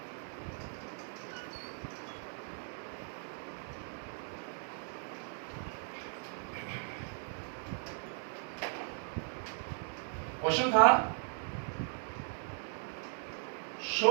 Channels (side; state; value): left; silent; 53 dB below the other